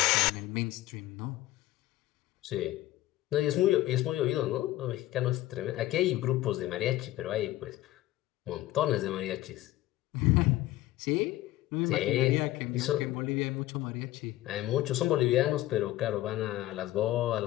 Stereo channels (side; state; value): right; quieter; 15.9 dB